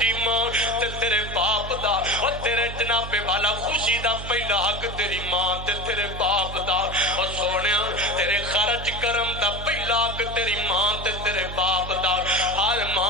ماں تے تیرے باپ دا اور تیرے جناب والا خوشی دا پہلا حق تیری ماں تے تیرے باپ دا اور سونیا تیرے خرچ کرم دا پہلا حق تیری ماں تے تیرے باپ دا ہر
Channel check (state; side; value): noise; right; hum, 8 dB below the sound